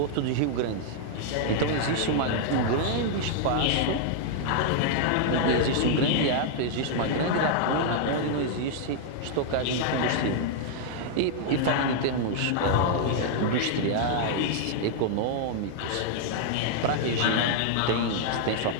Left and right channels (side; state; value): both; different; correlation -0.01